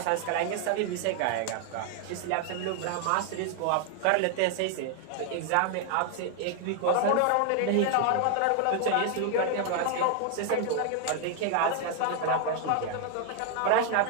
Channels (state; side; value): different; both; correlation 0.00